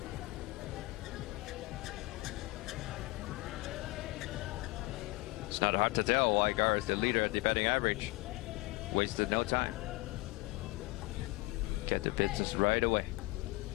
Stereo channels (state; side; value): quieter; right; 22.1 dB